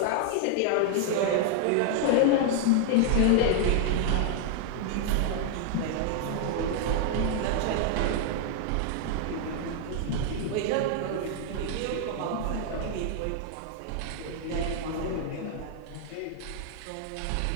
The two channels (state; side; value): different; both; correlation 0.00